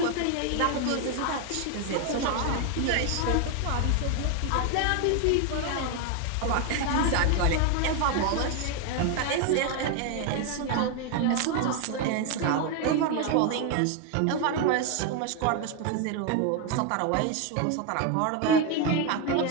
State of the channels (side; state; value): both; different; correlation 0.01